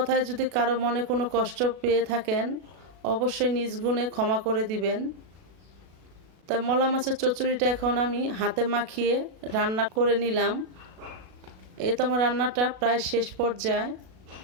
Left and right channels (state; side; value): late; left; 37 ms